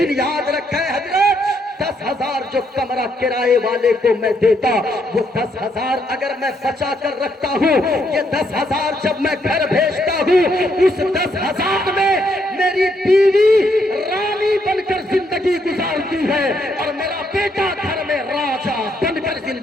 याद रखें हजरत 10,000 जो कमरा किराए वाले को मैं देता, वो 10,000 अगर मैं बचा कर रखता हूँ, ये 10,000 जब मैं घर भेजता हूँ, उस 10,000 में मेरी बीवी रानी बनकर जिंदगी गुजारती है और मेरा बेटा घर में राजा बनकर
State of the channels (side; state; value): both; normal; correlation 0.74